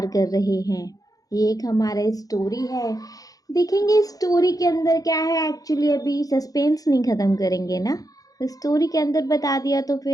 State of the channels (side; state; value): right; late; 0.17 ms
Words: कर रहे हैं। ये एक हमारा स्टोरी है। देखेंगे स्टोरी के अंदर क्या है। एक्चुअली अभी सस्पेंस नहीं ख़त्म करेंगे ना, स्टोरी के अंदर बता दिया तो